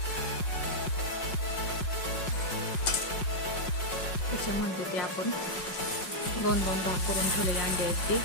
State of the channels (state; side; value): late; right; 5.5 ms